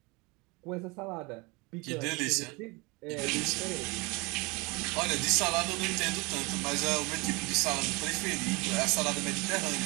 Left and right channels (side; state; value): left; quieter; 26.6 dB